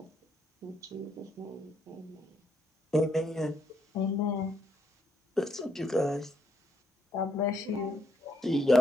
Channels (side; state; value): both; normal; correlation 0.74